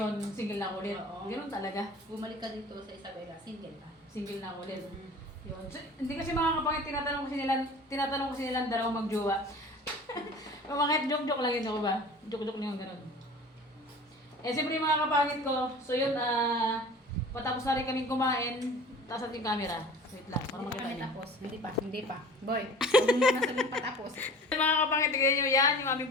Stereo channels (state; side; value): normal; both; correlation 0.41